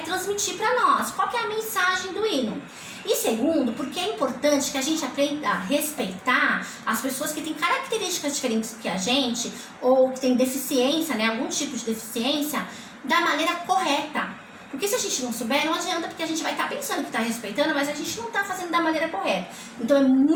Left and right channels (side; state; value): both; identical; correlation 1.00